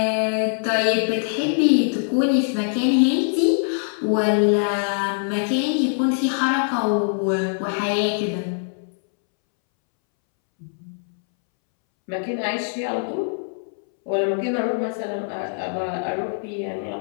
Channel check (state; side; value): silent; right; 64 dB below the other